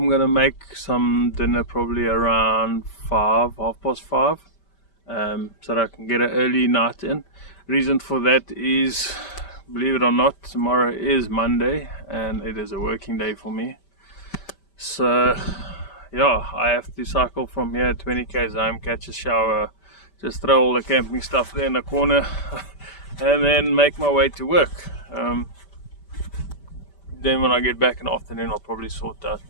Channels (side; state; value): right; late; 5.1 ms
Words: gonna make some dinner probably around 5:30, so that I can get an early night in. Reason for that is, believe it or not, tomorrow is Monday and it is a working day for me. So yeah, I have to cycle from here 20 k's home, catch a shower, just throw all the camping stuff there in the corner and then make my way to work. Then when I get back in the afternoon, I'll probably sort out